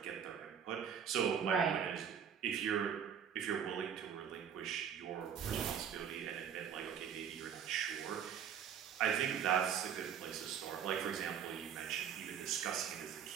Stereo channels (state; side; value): quieter; left; 8.0 dB